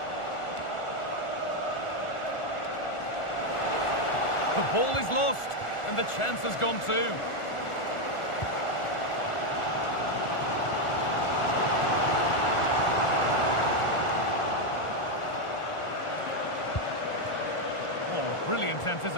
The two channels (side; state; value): right; late; 1.4 ms